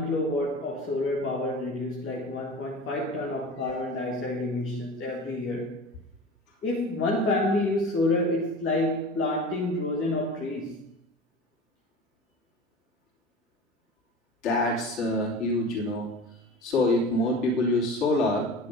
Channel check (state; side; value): normal; both; correlation 0.35